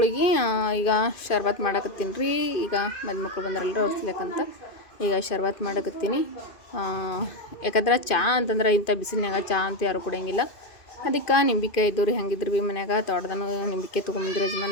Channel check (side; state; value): right; late; 2.5 ms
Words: ಈಗ ಶರ್ಬತ್ ಮಾಡಕತ್ತೀನಿ ರೀ. ಈಗ ಮದಿ ಮಕ್ಕಳು ಬಂದ್ರಲ್ರಿ ಅವ್ರು ಸಿಲಕ್ಕಂತ ಈಗ ಶರ್ಬತ್ ಮಾಡಕತ್ತೀನಿ. ಯಾಕಂದ್ರೆ ಚಹಾ ಅಂತಂದ್ರೆ ಇಂಥ ಬಿಸಿಲಿನಾಗ ಚಹಾ ಅಂತ ಯಾರು ಕುಡಿಯಂಗಿಲ್ಲ. ಅದಕ್ಕೆ ನಿಂಬಿಕಾಯಿ ಇದ್ದು ರೀ, ಹಂಗಿದ್ರು ಭೀ ಮನ್ಯಾಗ ತೋಟದನು ನಿಂಬಿಕಾಯಿ ತೊಗೊಂಬಂದ್ರೆ